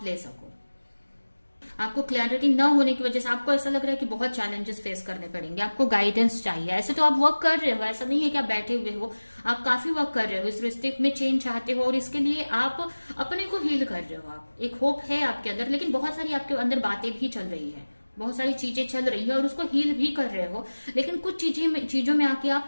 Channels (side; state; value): both; inverted; correlation -1.00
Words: ले सको। आपको क्लैरिटी न होने की वजह से आपको ऐसा लग रहा है कि बहुत चैलेंजेस फेस करने पड़ेंगे, आपको गाइडेंस चाहिए। ऐसे तो आप वर्क कर रहे हो, ऐसा नहीं है कि आप बैठे हुए हो, आप काफी वर्क कर रहे हो, इस रिश्ते में चेंज चाहते हो, और इसके लिए आप अपने को हील कर रहे हो। आप एक होप है आपके अंदर, लेकिन बहुत सारी आपके अंदर बातें भी चल रही है, बहुत सारी चीजें चल रही है, और उसको हील भी कर रहे हो, लेकिन कुछ चीजों में आके